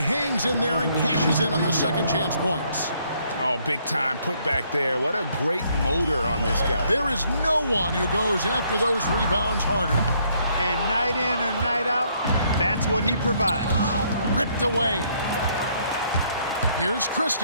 hangs in there and cashes in on the second chance points. Oh, big time put back there. What a great motor on this guy. There is no one who goes after those rebounds harder. And night in and night out, that's what he provides. Ripped away. Here's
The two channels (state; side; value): inverted; both; correlation -0.68